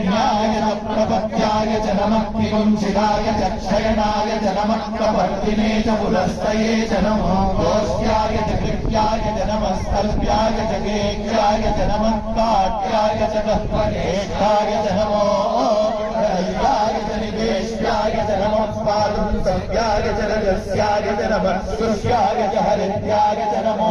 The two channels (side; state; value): both; identical; correlation 1.00